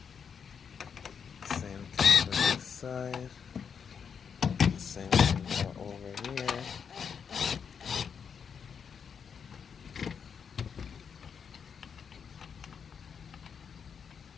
Same thing for this side. Same thing for over here.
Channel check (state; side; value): quieter; right; 6.8 dB